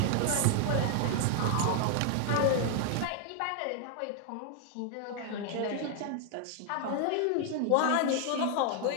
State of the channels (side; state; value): both; different; correlation 0.00